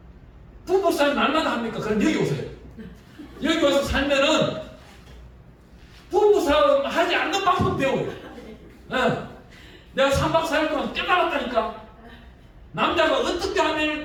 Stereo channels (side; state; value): both; identical; correlation 1.00